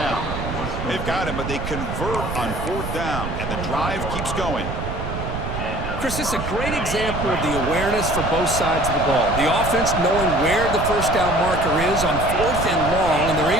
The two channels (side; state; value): right; noise; rumble, 5 dB below the sound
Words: They've got him, but they convert on fourth down, and the drive keeps going. Chris, it's a great example of the awareness for both sides of the ball. The offense knowing where the first down marker is on fourth and long, and they're